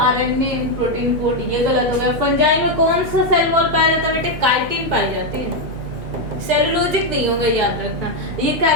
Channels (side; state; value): both; normal; correlation 0.03